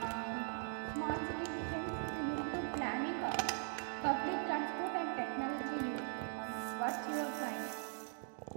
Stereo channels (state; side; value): silent; left; 51 dB below the other